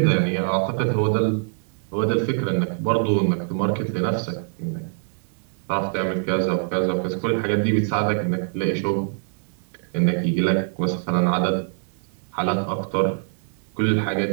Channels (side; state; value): left; silent; digital silence